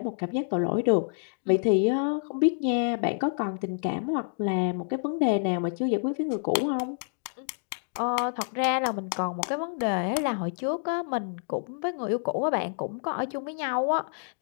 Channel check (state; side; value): silent; right; digital silence